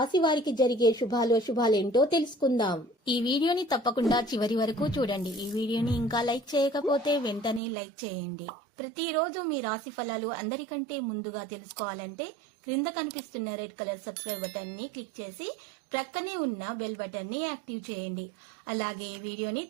వారికి జరిగే శుభాలేంటో తెలుసుకుందాం. ఈ వీడియోని తప్పకుండా చివరి వరకు చూడండి. ఈ వీడియోని ఇంకా లైక్ చేయకపోతే వెంటనే లైక్ చేయండి. ప్రతిరోజు మీ రాశి ఫలాలు అందరికంటే ముందుగా తెలుసుకోవాలంటే క్రింద కనిపిస్తున్న రెడ్ కలర్ సబ్స్క్రైబ్ బటన్ ని క్లిక్ చేసి ప్రక్కనే ఉన్న బెల్ బటన్ ని యాక్టివ్ చేయండి. అలాగే ఈ వీడియోని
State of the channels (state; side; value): drops out; left; at 7.6 s